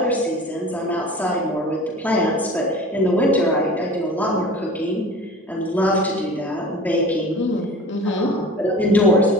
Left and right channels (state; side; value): normal; both; correlation 0.40